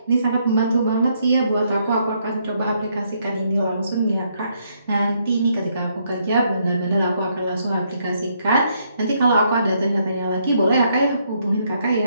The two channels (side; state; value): both; inverted; correlation -0.73